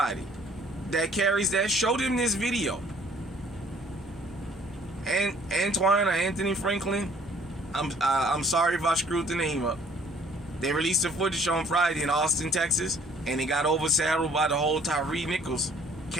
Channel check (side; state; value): both; normal; correlation 0.57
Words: that carries that, show them this video. And Antoine or Anthony Franklin, I'm sorry if I screwed the name up. They released the footage on Friday in Austin, Texas, and it got overshadowed by the whole Tyree Nichols